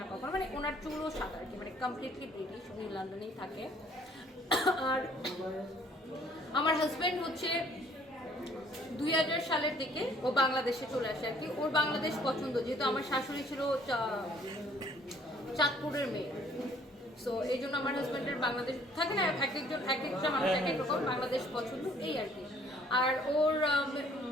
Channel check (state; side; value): normal; both; correlation 0.60